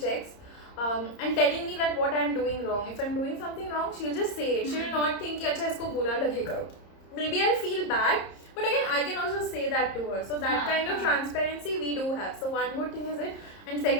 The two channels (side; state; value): right; late; 30 ms